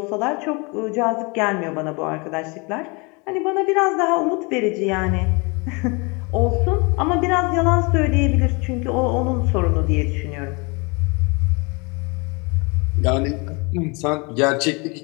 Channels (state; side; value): quieter; right; 29.5 dB